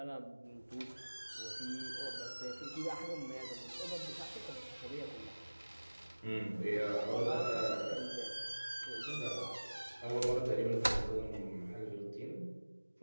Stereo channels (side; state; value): both; inverted; correlation -1.00